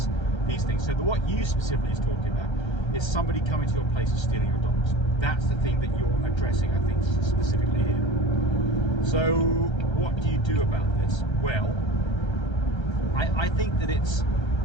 things. So what you specifically is talking about is somebody coming to your place and stealing your dogs. That's the thing that you're addressing, I think, specifically here. So what do you do about this? Well, I think that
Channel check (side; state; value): right; late; 1.3 ms